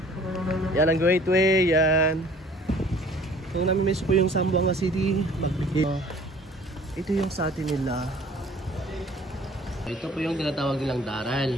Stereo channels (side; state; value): both; normal; correlation 0.52